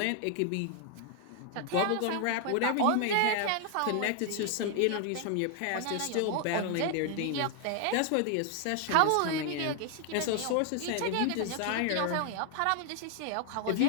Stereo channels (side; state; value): both; different; correlation 0.00